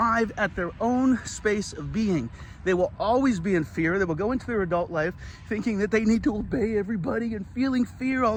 at their own space of being. They will always be in fear. They will go into their adult life thinking that they need to obey everybody and feeling fear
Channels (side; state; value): both; identical; correlation 1.00